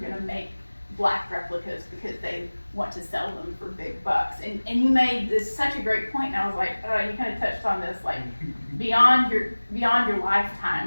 make black replicas because they want to sell them for big bucks. And you made this such a great point, and I was like, you kind of touched on this, like, beyond your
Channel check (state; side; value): inverted; both; correlation -1.00